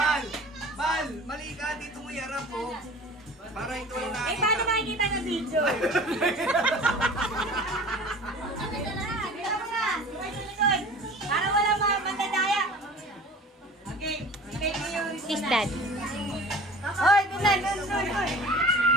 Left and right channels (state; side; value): normal; both; correlation 0.42